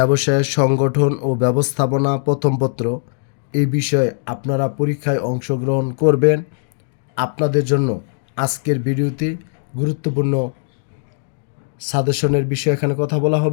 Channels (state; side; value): silent; right; digital silence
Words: সংগঠন ও ব্যবস্থাপনা প্রথম পত্র এই বিষয়ে আপনারা পরীক্ষায় অংশগ্রহণ করবেন, আপনাদের জন্য আজকের ভিডিওতে গুরুত্বপূর্ণ সাজেশনের বিষয়ে এখানে কথা বলা